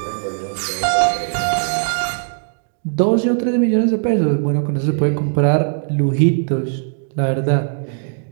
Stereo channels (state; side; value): silent; left; 66 dB below the other